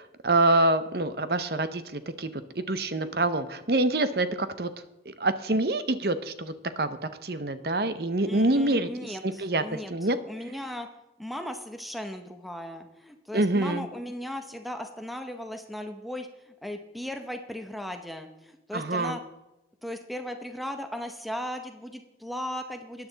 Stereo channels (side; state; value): both; normal; correlation 0.09